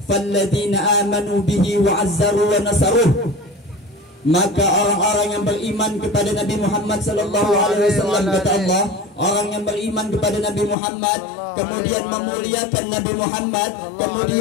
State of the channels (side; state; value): right; drops out; at 10.8 s